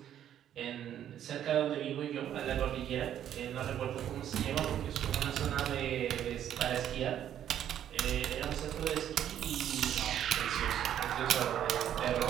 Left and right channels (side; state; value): left; quieter; 10.5 dB